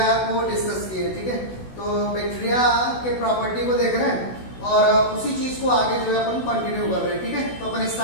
को डिस्कस किए। ठीक है, तो बैक्टीरिया के प्रॉपर्टी को देख रहे हैं और उसी चीज को आगे जो है अपन कंटिन्यू कर रहे हैं। ठीक है, तो अपन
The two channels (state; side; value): late; right; 16 ms